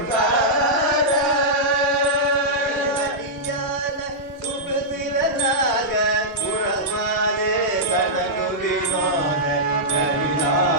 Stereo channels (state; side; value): normal; both; correlation -0.11